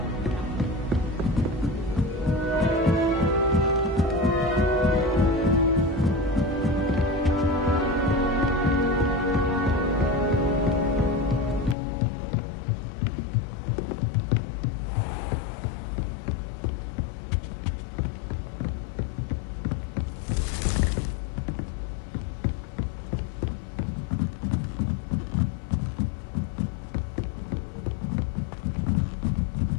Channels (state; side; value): drops out; right; at 11.8 s